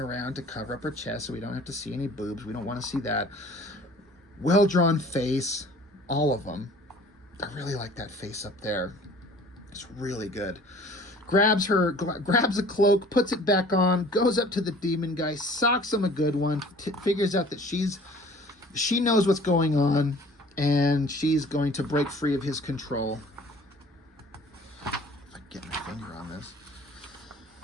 to cover up her chest so we don't have to see any boobs. We don't want to see that. Well-drawn face, all of them. I really like that face up there. It's really good. Grabs a cloak, puts it back on, goes up to the demon guy, socks him a good one, figures out that she knows what's going on, and she's going to break free of his control. If I can get my finger on this.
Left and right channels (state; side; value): normal; both; correlation 0.49